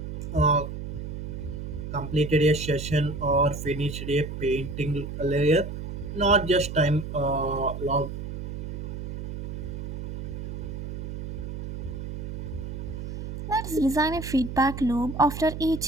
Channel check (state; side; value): noise; right; hum, 6 dB below the sound